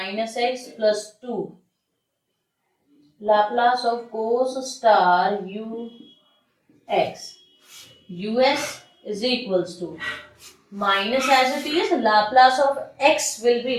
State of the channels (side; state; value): both; identical; correlation 1.00